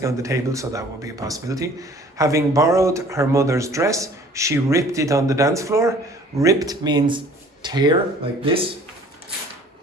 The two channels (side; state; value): both; normal; correlation 0.52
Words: on the table, so that would be a possibility. Having borrowed her mother's dress, she ripped it on the dance floor. Ripped means tear, like this.